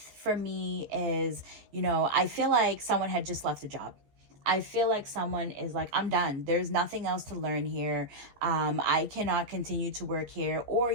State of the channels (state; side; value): late; left; 15 ms